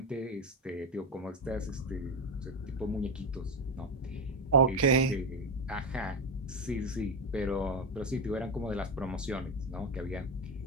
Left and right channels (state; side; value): normal; both; correlation 0.14